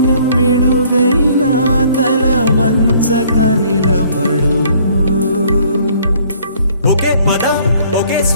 పిడుగైనా తల వంచక నిలబడు. ఒకే పదం ఒకే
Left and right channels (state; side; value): inverted; both; correlation -0.59